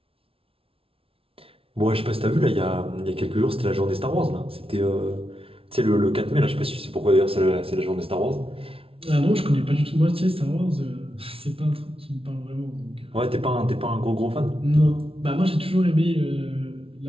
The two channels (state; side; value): late; left; 0.26 ms